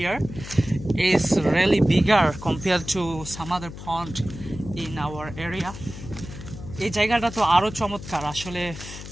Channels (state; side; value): noise; left; hum, 12 dB below the sound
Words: It's really bigger compared to some other pond in our area. এই জায়গাটা তো আরো চমৎকার, আসলে